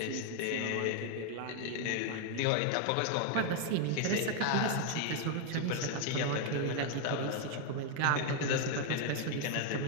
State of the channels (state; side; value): different; both; correlation 0.01